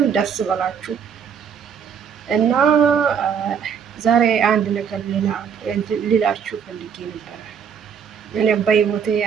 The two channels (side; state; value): left; quieter; 7.3 dB